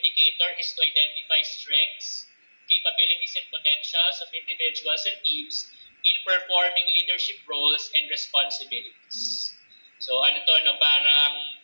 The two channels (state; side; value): inverted; both; correlation -1.00